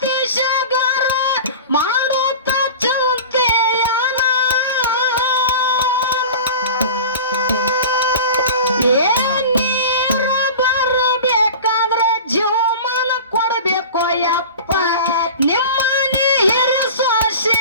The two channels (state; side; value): inverted; both; correlation -0.36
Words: ಮಾಡುತ್ತ ಚಿಂತೆಯನ. ಏ ನೀರ ಬರಬೇಕಾದ್ರ ಜೀವಮಾನ ಕೊಡ್ಬೇಕು ಯಪ್ಪ, ನಿಮ್ಮನೆ ಹಿರಿಯ